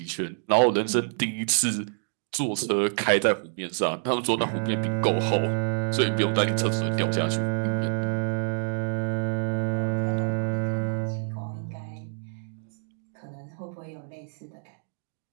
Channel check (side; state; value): left; silent; 60 dB below the other